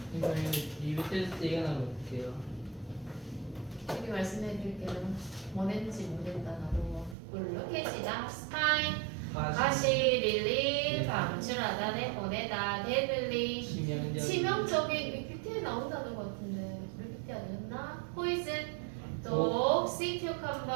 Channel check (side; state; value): left; drops out; at 7.2 s